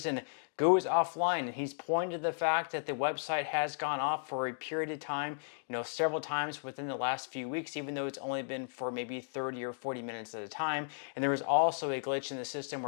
goes offline. And he's pointed to the fact that the website has gone off for a period of time, several times within the last few weeks, even though it's only been for maybe 30 or 40 minutes at a time. And there was also a glitch in the system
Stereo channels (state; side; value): silent; right; digital silence